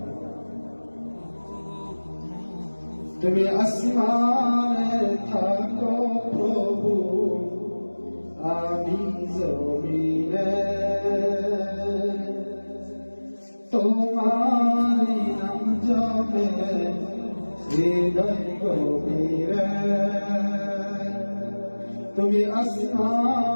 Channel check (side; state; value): both; inverted; correlation -1.00